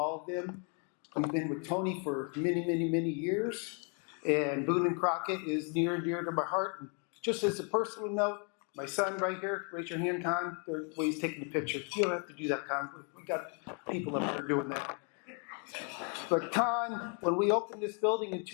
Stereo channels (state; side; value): quieter; right; 38.3 dB